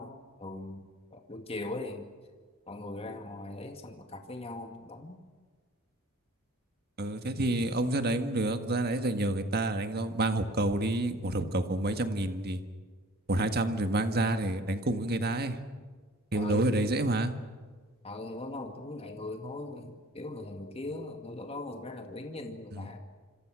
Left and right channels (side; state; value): both; normal; correlation 0.51